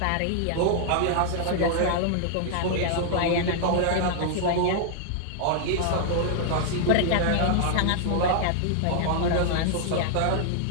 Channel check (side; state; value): both; different; correlation -0.01